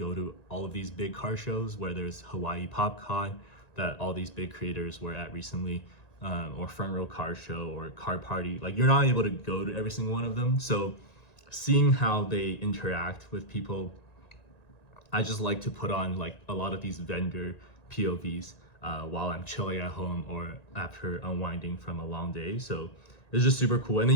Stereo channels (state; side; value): late; right; 1.9 ms